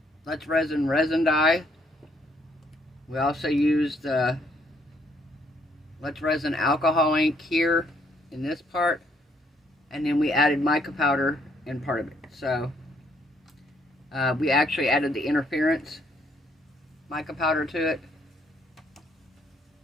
Let's resin dye. We also used Let's Resin alcohol ink here in this part, and then we added mica powder in part of it. So we actually added the interference mica powder to it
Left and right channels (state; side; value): normal; both; correlation 0.69